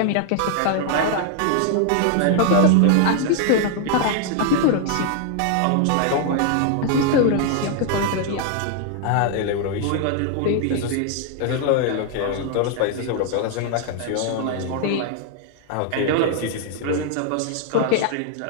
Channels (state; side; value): different; both; correlation 0.00